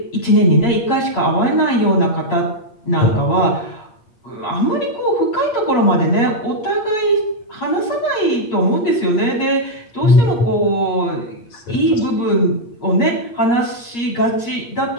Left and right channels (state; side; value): late; right; 8.5 ms